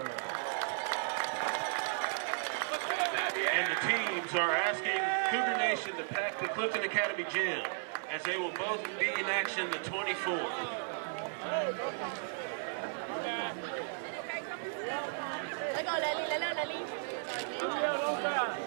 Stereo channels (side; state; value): left; silent; 55 dB below the other